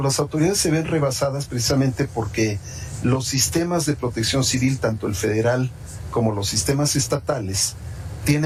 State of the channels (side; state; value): both; identical; correlation 1.00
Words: autoridades se ven rebasadas precisamente porque los sistemas de protección civil, tanto el federal como los sistemas estatales,